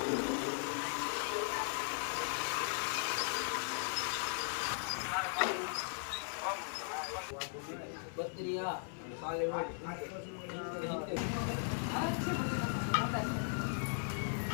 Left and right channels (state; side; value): silent; right; 52 dB below the other